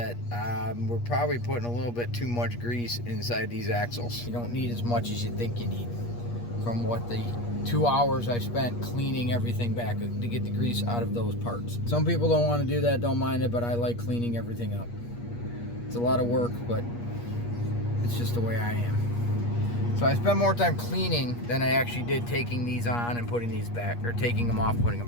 we're probably putting a little bit too much grease inside these axles. You don't need as much as you think you need from what the 2 hours I spent cleaning everything back to get the grease out of those parts. Some people don't want to do that, don't mind it, but I like cleaning everything up. It's a lot of work, but it's just the way I am. So I spend more time cleaning than I actually did taking these on and putting these back, or taking them off and putting them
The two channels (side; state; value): right; late; 8.4 ms